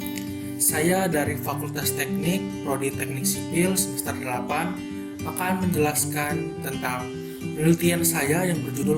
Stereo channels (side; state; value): both; identical; correlation 1.00